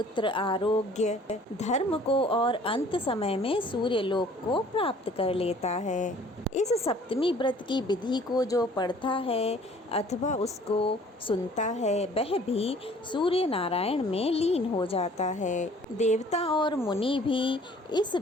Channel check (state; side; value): normal; both; correlation 0.54